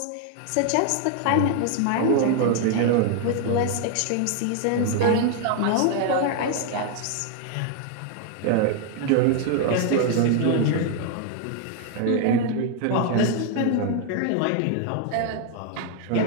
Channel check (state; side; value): different; both; correlation 0.00